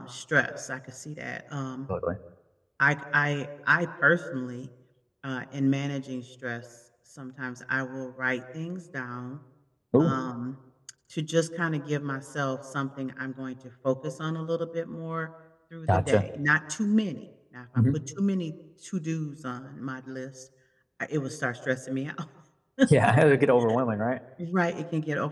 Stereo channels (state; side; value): identical; both; correlation 1.00